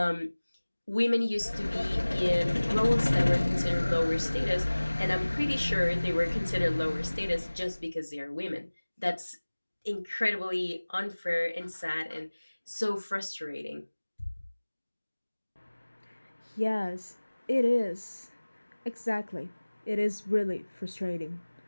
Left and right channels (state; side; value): inverted; both; correlation -1.00